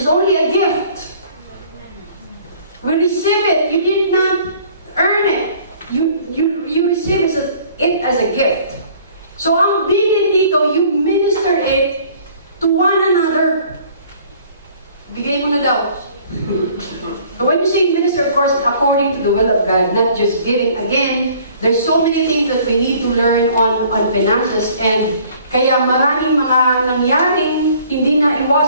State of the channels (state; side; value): inverted; both; correlation -0.55